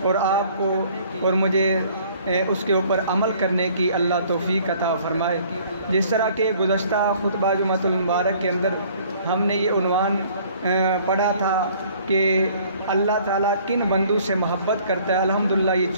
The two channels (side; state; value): both; inverted; correlation -0.56